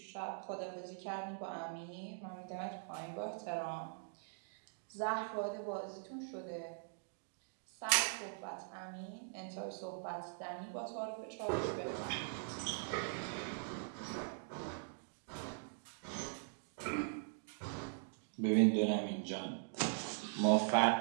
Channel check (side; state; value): left; silent; digital silence